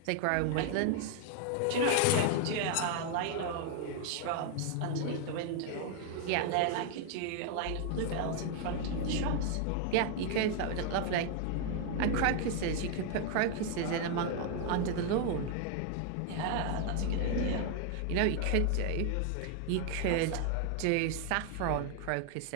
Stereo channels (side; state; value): both; different; correlation 0.00